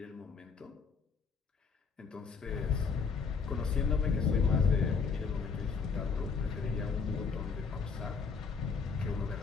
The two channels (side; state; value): right; quieter; 5.4 dB